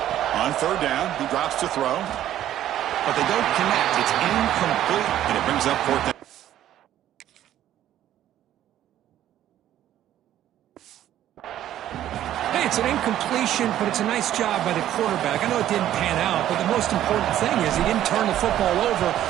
On 3rd down, he drops to throw. But they don't connect. It's incomplete, and it brings up 4th down. It's an incompletion, but it's a nice job by the quarterback. I know it didn't pan out, but the most important thing is he didn't turn the football over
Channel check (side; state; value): left; quieter; 12.1 dB